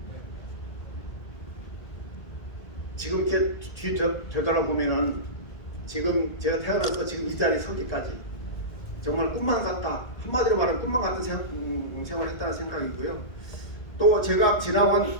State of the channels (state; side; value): late; right; 1.8 ms